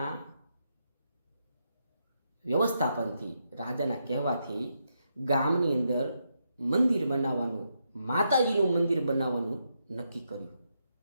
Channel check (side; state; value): both; inverted; correlation -0.82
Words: વ્યવસ્થાપનથી, રાજાના કહેવાથી ગામની અંદર મંદિર બનાવવાનું, માતાજીનું મંદિર બનાવવાનું નક્કી કર્યું.